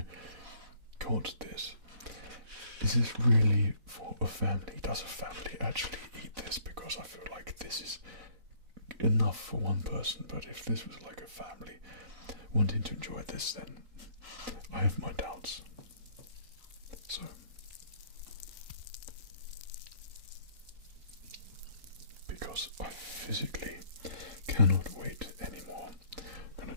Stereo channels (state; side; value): late; left; 4.0 ms